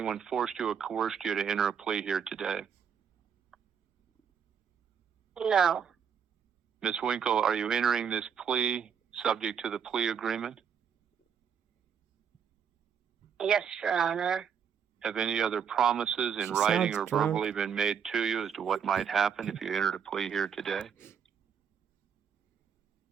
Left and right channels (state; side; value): quieter; left; 7.4 dB